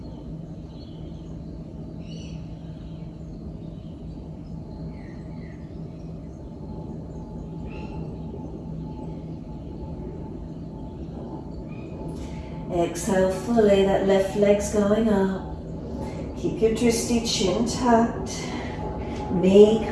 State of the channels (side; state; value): both; identical; correlation 1.00